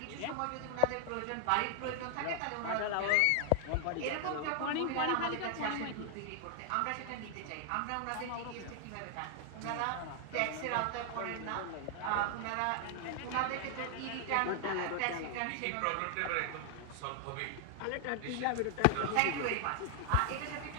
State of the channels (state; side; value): different; both; correlation 0.00